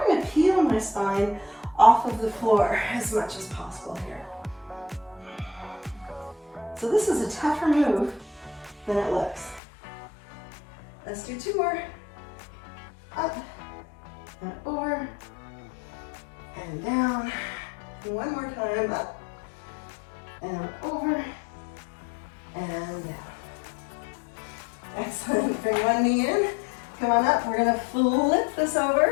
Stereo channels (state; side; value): drops out; right; at 9.6 s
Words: to peel my spine off of the floor as much as possible here. So this is a tougher move than it looks. Let's do 2 more. Up and over and down. And 1 more time. Up and over and down. Excellent. Bring 1 knee in. Come on up. We're going to flip this